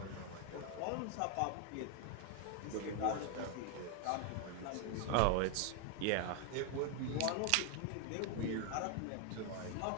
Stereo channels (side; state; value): both; different; correlation 0.01